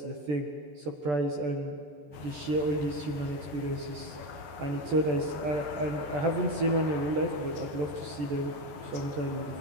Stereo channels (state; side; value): late; left; 14 ms